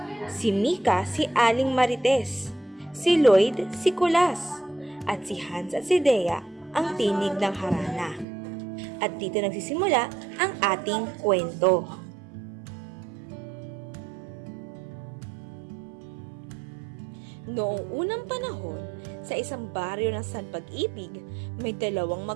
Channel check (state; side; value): drops out; left; at 8.2 s